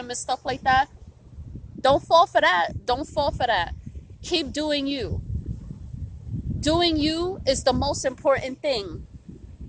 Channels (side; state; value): both; identical; correlation 1.00